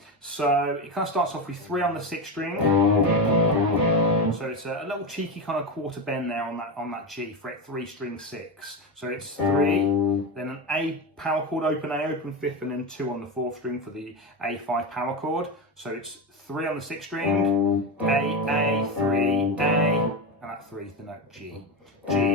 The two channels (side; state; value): both; normal; correlation 0.16